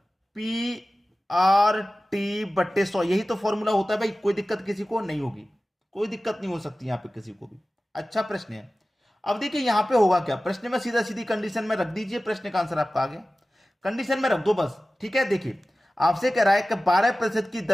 PRT/100, यही तो फॉर्मूला होता है भाई। कोई दिक्कत किसी को नहीं होगी, कोई दिक्कत नहीं हो सकती यहां पे किसी को भी। अच्छा प्रश्न है। अब देखिए यहां पे होगा क्या, प्रश्न में सीधा सीधी कंडीशन में रख दीजिए, प्रश्न का आंसर आपका आ गया। कंडीशन में रख दो बस। ठीक है, देखिए आपसे कह रहा है कि 12% की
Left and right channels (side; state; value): both; normal; correlation 0.96